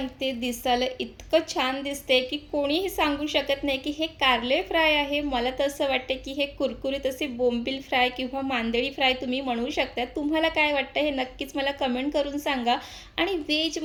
दिसायला इतकं छान दिसते की कोणीही सांगू शकत नाही की हे कारले फ्राय आहे. मला तर असं वाटतं की हे कुरकुरीत असे बोंबील फ्राय किंवा मांदेळी फ्राय तुम्ही म्हणू शकता. तुम्हाला काय वाटतं हे नक्कीच मला कमेंट करून सांगा. आणि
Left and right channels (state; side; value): identical; both; correlation 1.00